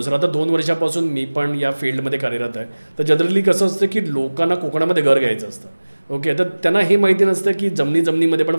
सर, आता 2 वर्षापासून मी पण या फील्डमध्ये कार्यरत आहे. तर जनरली कसं असतं की लोकांना कोकणामध्ये घर घ्यायचं असतं. ओके, तर त्यांना हे माहिती नसतं की जमिनीमध्ये पण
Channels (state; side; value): inverted; both; correlation -1.00